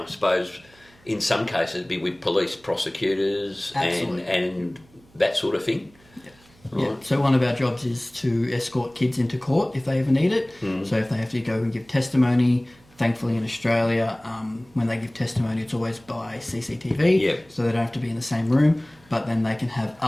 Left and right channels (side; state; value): right; noise; hum, 29 dB below the sound